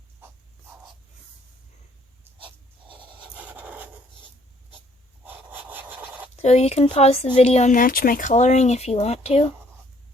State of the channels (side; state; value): both; normal; correlation 0.63